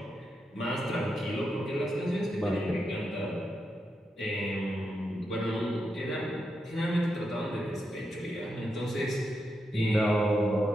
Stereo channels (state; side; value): normal; both; correlation 0.85